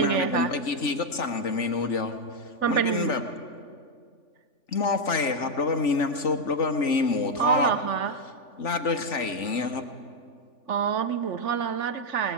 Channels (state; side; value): late; right; 3.5 ms